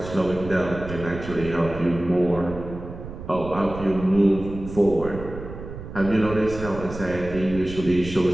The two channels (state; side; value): noise; right; rumble, 11 dB below the sound